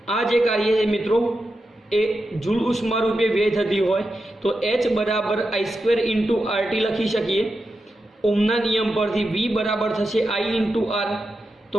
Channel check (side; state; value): both; normal; correlation 0.89